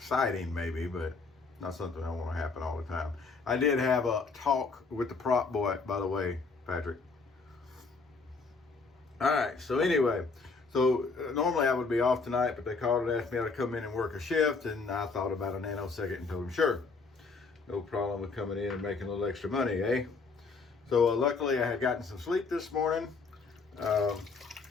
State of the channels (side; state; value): right; quieter; 4.3 dB